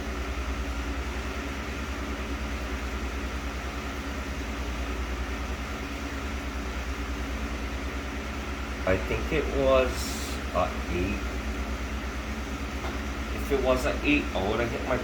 I think it was 8. If it was an 8, I would have hit my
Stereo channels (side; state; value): both; identical; correlation 1.00